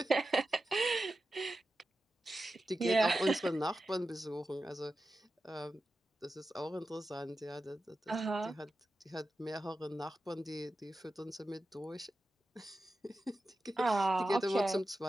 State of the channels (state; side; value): normal; both; correlation 0.92